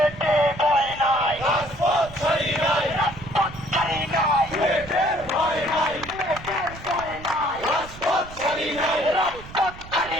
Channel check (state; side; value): noise; right; rumble, 16 dB below the sound